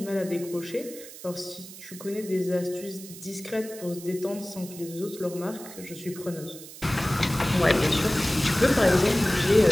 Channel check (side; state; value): right; noise; hiss, 15 dB below the sound